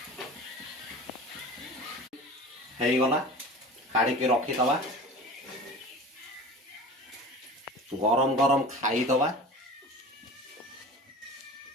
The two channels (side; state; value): both; normal; correlation 0.37